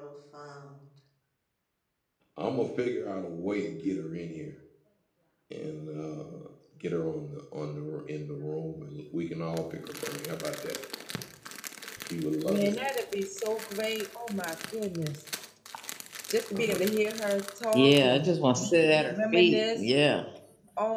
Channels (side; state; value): both; identical; correlation 1.00